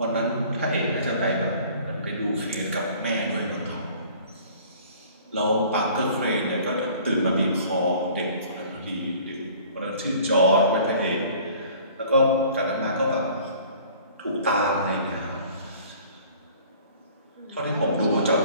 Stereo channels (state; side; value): inverted; both; correlation -0.50